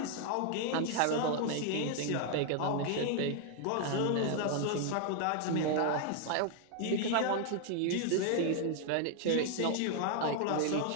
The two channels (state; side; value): different; both; correlation 0.00